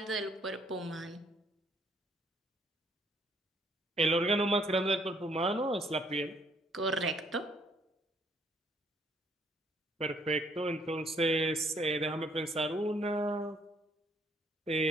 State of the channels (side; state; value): both; normal; correlation 0.66